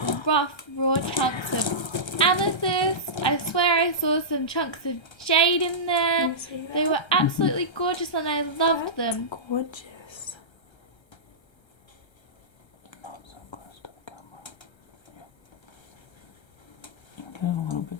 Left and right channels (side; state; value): right; late; 1.3 ms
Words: rough, raw chunks of amethyst. I swear I saw some chunks of jade in there. Can you see that? They were absolutely gorgeous and I loved them. Gorgeous. Not so close to the camera. Yeah. Get a little